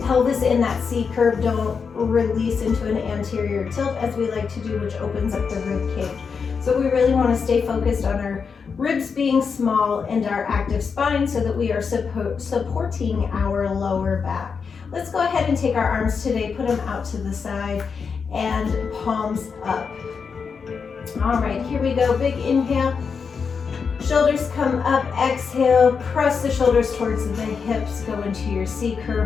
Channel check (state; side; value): quieter; right; 5.8 dB